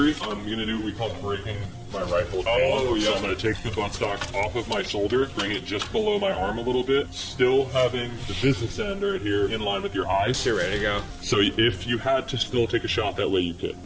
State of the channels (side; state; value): both; identical; correlation 1.00